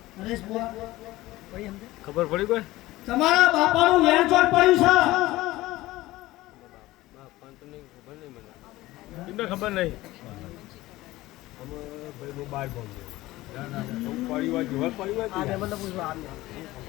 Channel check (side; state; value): right; quieter; 17.8 dB